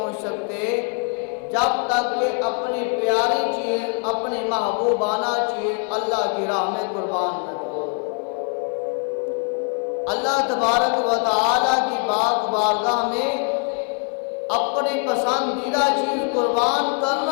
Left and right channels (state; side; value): quieter; right; 39.3 dB